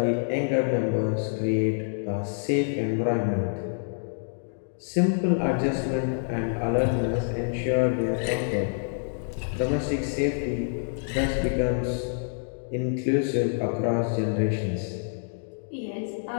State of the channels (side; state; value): right; silent; digital silence